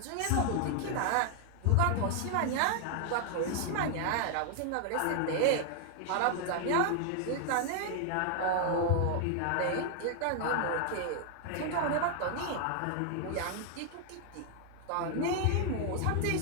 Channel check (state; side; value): different; both; correlation 0.00